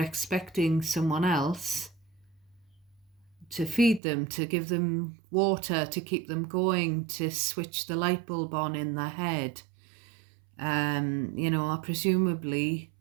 someone else to feed them, to give them water, to keep them going, to switch the light bulb on in their head, you know, or presumably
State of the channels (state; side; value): drops out; left; at 4.0 s